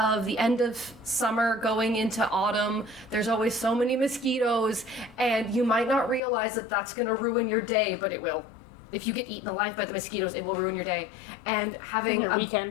the end of summer going into autumn, there's always so many mosquitoes, and you might not realize that that's going to ruin your day, but it will. If you get eaten alive by the mosquitoes, it will ruin your day. And having Your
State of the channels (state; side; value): drops out; right; at 6.2 s